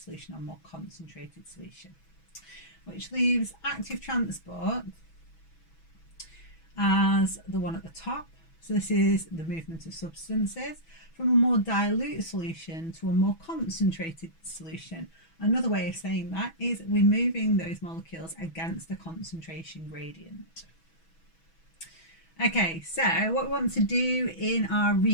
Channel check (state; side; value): late; right; 6.1 ms